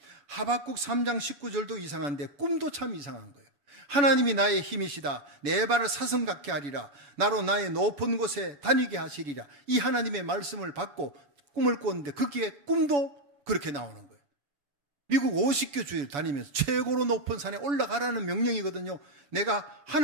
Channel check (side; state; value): left; late; 7.0 ms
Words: 하박국 3장 19절도 이상한데 꿈도 참 이상한 거예요. 하나님이 나의 힘이시다. 내 발을 사슴 같게 하리라. 나로 나의 높은 곳에 다니게 하시리라. 이 하나님의 말씀을 받고 꿈을 꿨는데 거기에 꿈도 그렇게 나오는 거예요. 미국 50개 주에 다니면서 최고로 높은 산에 올라가라는 명령이거든요. 내가